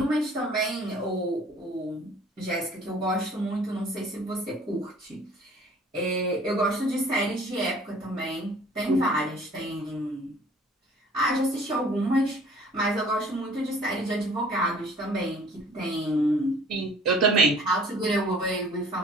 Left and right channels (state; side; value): normal; both; correlation 0.52